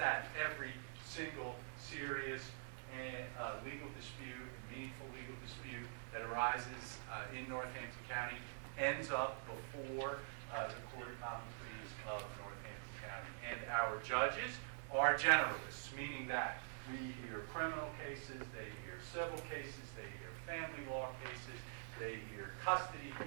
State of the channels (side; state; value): left; silent; digital silence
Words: every single serious and legal dispute, meaningful legal dispute that arises in Northampton County ends up before the Court of Common Pleas of Northampton County. And our judges are generalists, meaning that we hear criminal cases, they hear civil cases, they hear family law cases, they hear custody